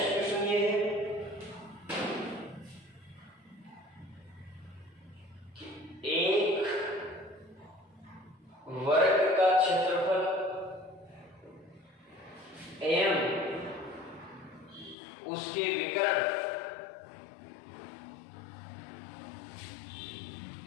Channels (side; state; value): right; drops out; at 15.0 s